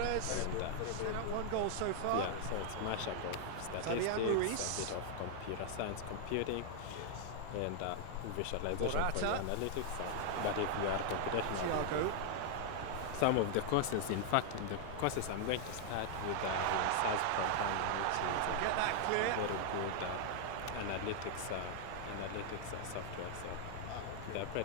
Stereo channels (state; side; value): different; both; correlation 0.00